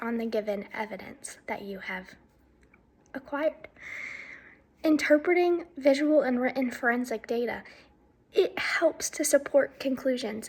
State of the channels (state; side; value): identical; both; correlation 1.00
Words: on the given evidence that you have acquired. Interpreting visual and written forensic data, it helps to support conclusions,